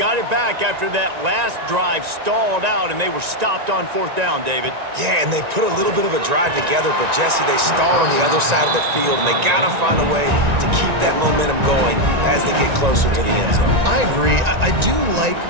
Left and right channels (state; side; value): late; left; 1.9 ms